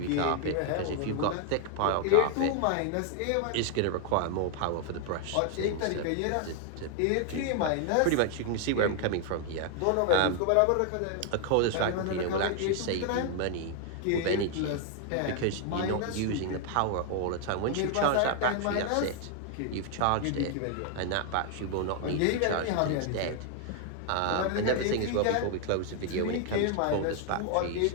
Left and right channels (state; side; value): different; both; correlation 0.00